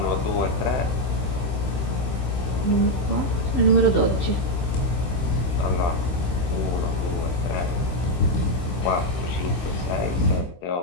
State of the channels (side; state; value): right; late; 16 ms